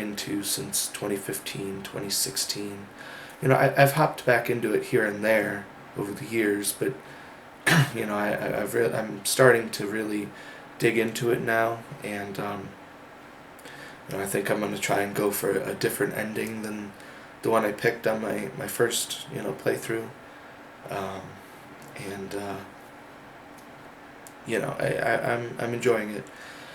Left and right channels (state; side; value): identical; both; correlation 1.00